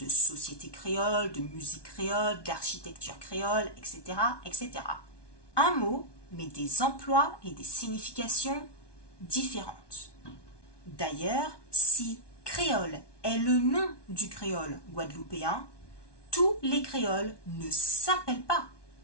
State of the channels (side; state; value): right; late; 1.2 ms